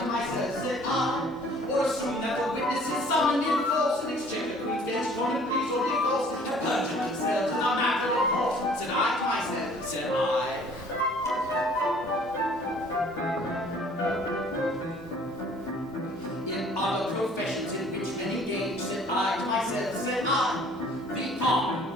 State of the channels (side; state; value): both; normal; correlation 0.54